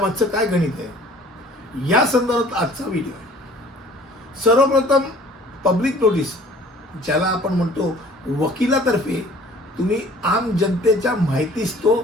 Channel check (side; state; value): both; normal; correlation 0.52